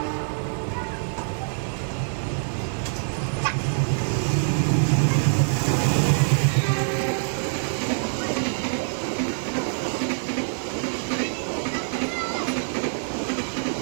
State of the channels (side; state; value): left; silent; digital silence